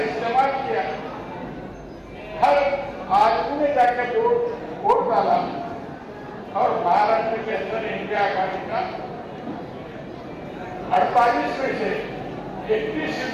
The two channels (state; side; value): identical; both; correlation 1.00